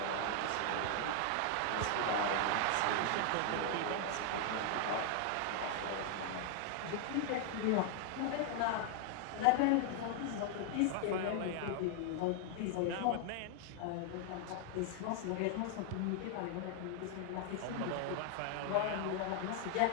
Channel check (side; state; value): both; different; correlation 0.00